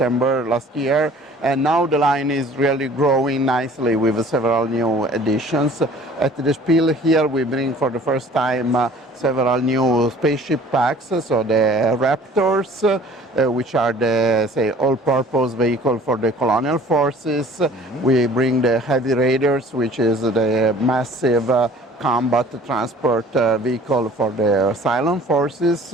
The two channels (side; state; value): both; normal; correlation 0.50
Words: last year. And now the line is really growing nicely with several new additions. At the Spiel here, we bring for the first time several new spaceship packs. So the Raptors, which are the, say, all-purpose vehicle for the colonial forces. We bring the Heavy Raiders, which is the massive combat transport vehicle for the Cylon forces.